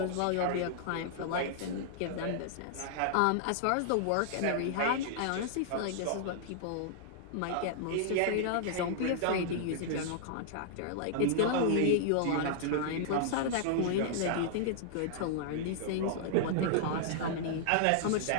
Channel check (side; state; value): both; different; correlation -0.01